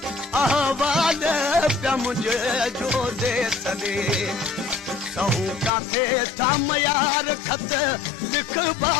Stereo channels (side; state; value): right; drops out; at 5.7 s